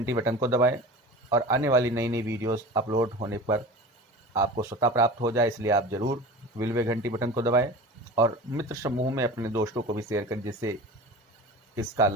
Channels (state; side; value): normal; both; correlation 0.35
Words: बटन को दबाएं और आने वाली नई नई वीडियोस अपलोड होने पर आपको स्वतः प्राप्त हो जाए, इसलिए आप ज़रूर बिल व घंटी बटन को दबाएं और मित्र समूह में अपने दोस्तों को भी शेयर करें जिससे इसका